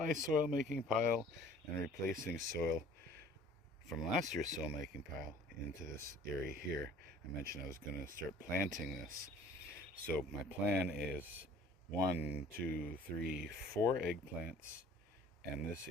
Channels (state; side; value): normal; both; correlation 0.50